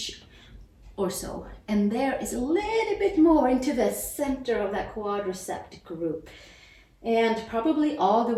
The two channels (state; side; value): identical; both; correlation 1.00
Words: or so. And there is a little bit more into the center of that quadricep group. And probably all the